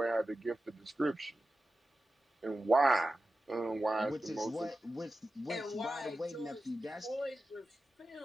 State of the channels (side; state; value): both; normal; correlation 0.93